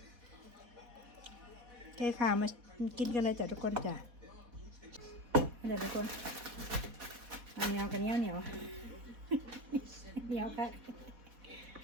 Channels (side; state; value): left; late; 4.1 ms